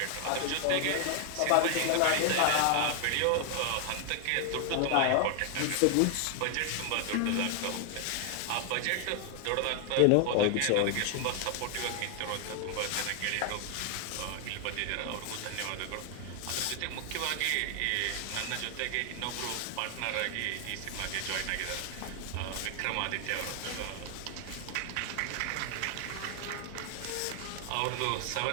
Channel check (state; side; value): different; both; correlation 0.00